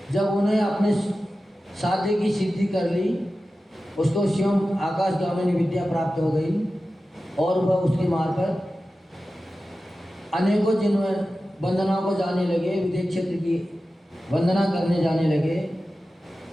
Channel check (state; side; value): normal; both; correlation 0.94